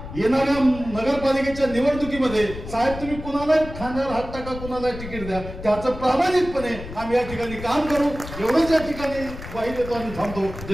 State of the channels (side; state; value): left; noise; rumble, 11 dB below the sound